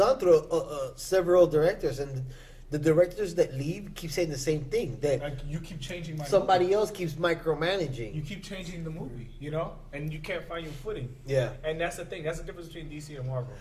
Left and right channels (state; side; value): identical; both; correlation 1.00